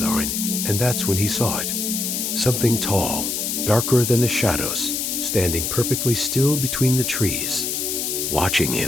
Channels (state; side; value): noise; left; hiss, 1 dB below the sound